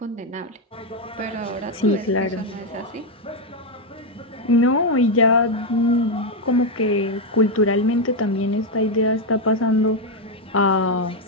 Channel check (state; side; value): normal; both; correlation 0.03